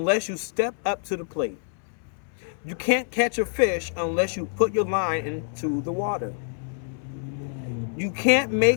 you step up to the plate. You can't catch a fish unless you put your line into the water. You can't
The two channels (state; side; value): silent; right; 60 dB below the other